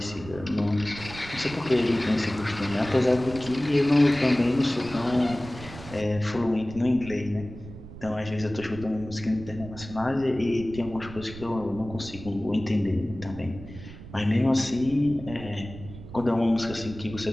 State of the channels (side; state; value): right; noise; rumble, 14 dB below the sound